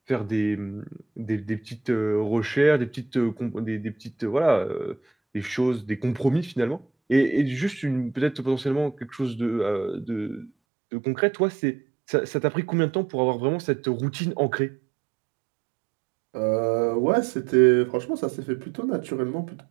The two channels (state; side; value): drops out; left; at 10.5 s